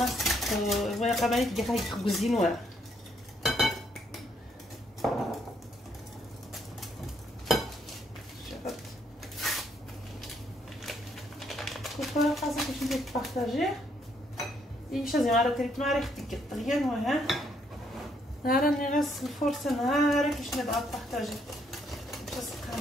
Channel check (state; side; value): normal; both; correlation 0.72